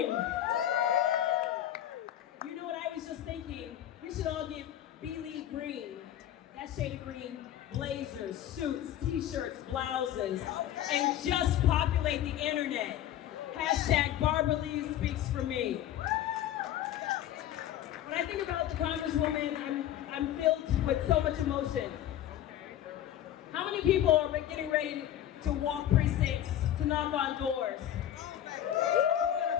You know what I was just thinking? We should all get Bealey green. That shade of green, blazers, suits, t-shirts, blouses, and just populate the internet. Hashtag Barbara Lee speaks for me. When I think about the Congresswoman, I'm filled with so much emotion. How many people are getting ready to walk precincts, to knock on doors? Who's gonna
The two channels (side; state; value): right; quieter; 11.7 dB